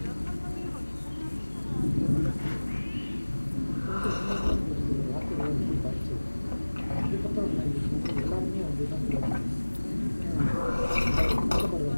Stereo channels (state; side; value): inverted; both; correlation -1.00